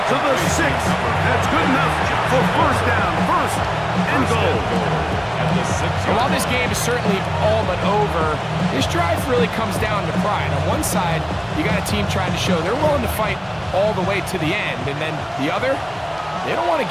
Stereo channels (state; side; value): identical; both; correlation 1.00